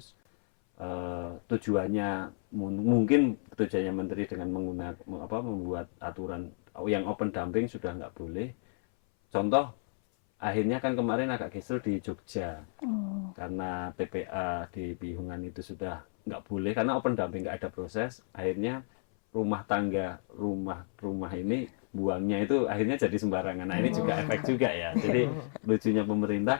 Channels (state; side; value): silent; right; 57 dB below the other